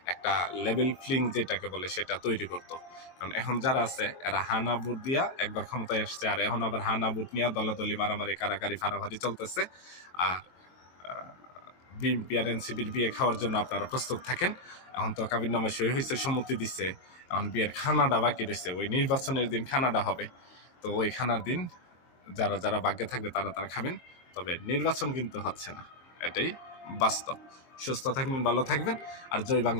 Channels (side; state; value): right; late; 23 ms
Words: একটা লেভেল ফ্লিং যেটাকে বলে সেটা তৈরি করতো। কারণ এখন যারা আছে এরা হানা ভোট দিয়া একবার ক্ষমতায় আসছে, আর এখন আবার হানা ভোট নিয়ে দলাদলি মারামারি কারাকারি ফারাফারি চলতেছে। আর বিএনপি আর এনসিপির বিয়ে খাওয়ার জন্য আপনারা প্রস্তুত থাকেন। এখন তো কাবিননামা সই হয়েছে, সম্মতি দিচ্ছে, এখন বিয়ের খানাটা বাকি রয়েছে। ওই নির্বাচনের দিন খানাটা হবে। তো ওই খানার দিন যারা যারা ভাগ্যে থাকবে তারা তারা খাবেন। তবে নির্বাচন কিন্তু হচ্ছে না, এটাই বাস্তব। সুস্থ থাকবেন, ভালো থাকবেন, আর জয়